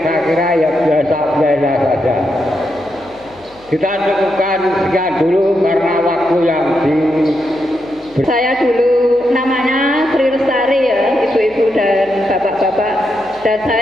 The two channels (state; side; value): noise; left; hum, 27 dB below the sound